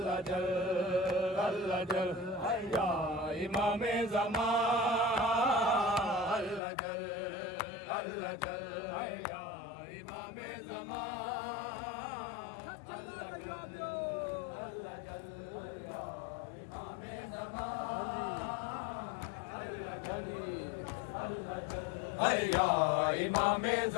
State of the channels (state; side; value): drops out; right; at 6.6 s